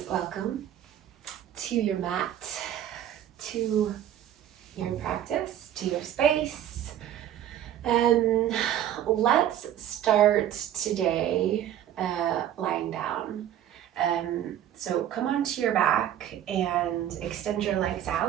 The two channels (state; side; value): quieter; left; 11.0 dB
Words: welcome to your mat, to your practice, to your space. Let's start today lying down. So come onto your back and extend your legs